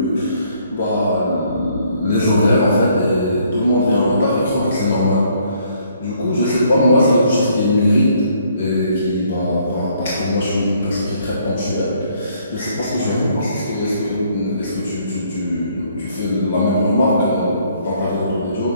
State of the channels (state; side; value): inverted; both; correlation -0.66